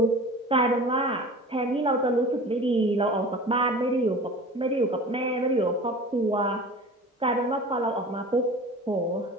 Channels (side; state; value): both; normal; correlation 0.38